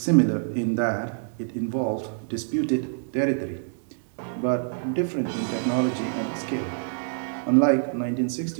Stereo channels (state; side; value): silent; left; digital silence